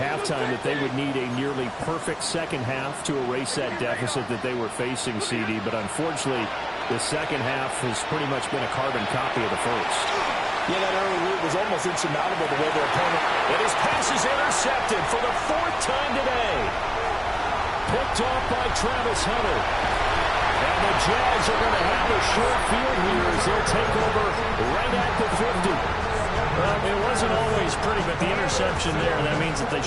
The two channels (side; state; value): both; identical; correlation 1.00